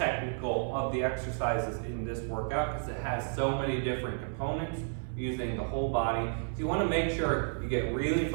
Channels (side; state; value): left; silent; 57 dB below the other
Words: of the exercises in this workout because it has so many different components using the whole body. So you want to make sure you get really